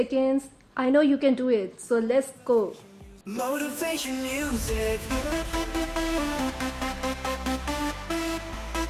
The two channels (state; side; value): identical; both; correlation 1.00